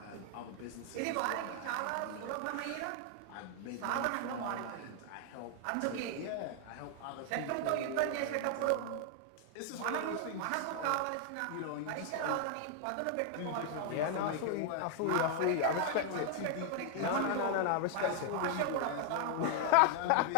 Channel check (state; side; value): different; both; correlation 0.00